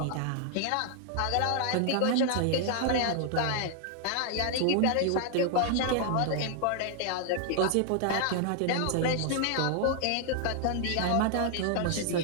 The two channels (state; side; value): different; both; correlation 0.00